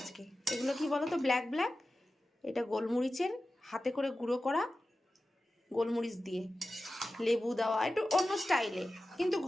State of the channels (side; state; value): both; normal; correlation 0.94